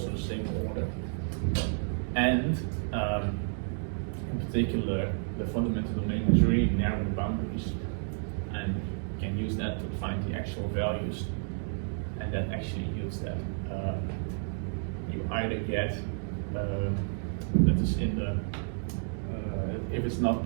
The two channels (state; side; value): silent; left; 57 dB below the other